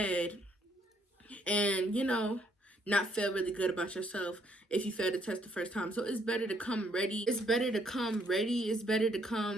and not feel really good about yourself if you fail the test the first time. So it's better to come ready. It's better to come ready. It's better to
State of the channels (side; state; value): both; normal; correlation 0.69